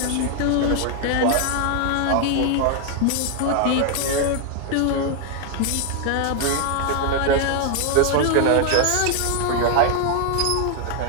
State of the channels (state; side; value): different; both; correlation 0.00